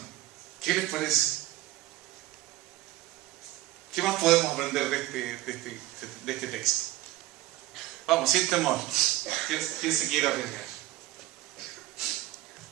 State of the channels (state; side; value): quieter; left; 16.2 dB